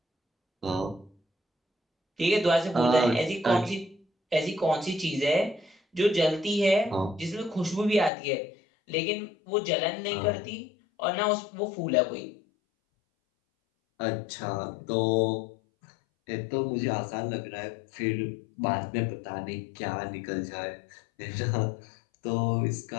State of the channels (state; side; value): drops out; right; at 8.1 s